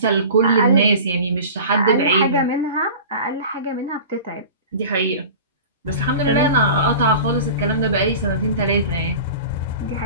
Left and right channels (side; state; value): both; inverted; correlation -0.37